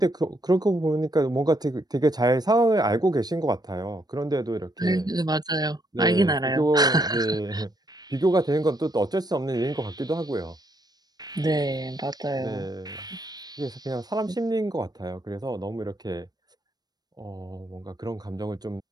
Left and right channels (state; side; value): late; left; 0.19 ms